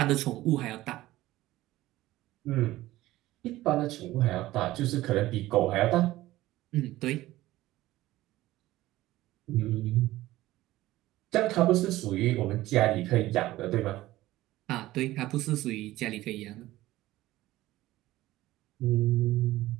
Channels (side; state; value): left; quieter; 16.5 dB